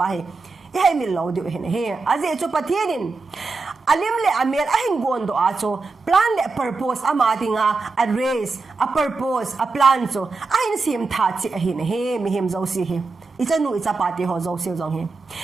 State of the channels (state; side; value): quieter; left; 4.0 dB